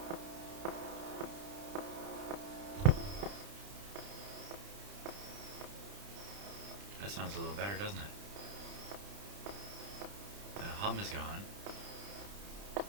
That sounds a little better, doesn't it? The hum is gone.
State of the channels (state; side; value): late; left; 30 ms